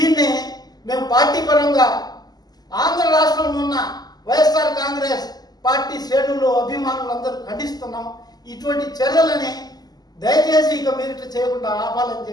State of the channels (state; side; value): late; right; 0.19 ms